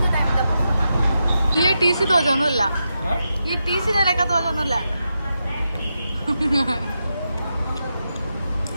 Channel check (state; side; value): inverted; both; correlation -0.87